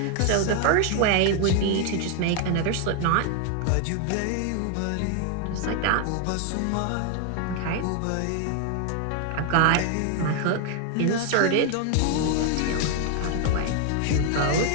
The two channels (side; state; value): both; different; correlation 0.01